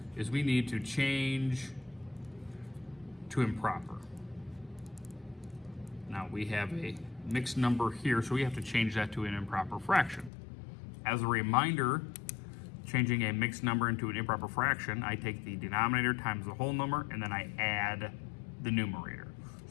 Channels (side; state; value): right; drops out; at 10.3 s